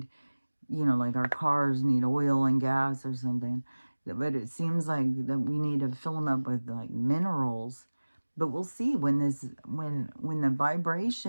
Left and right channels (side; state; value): both; inverted; correlation -1.00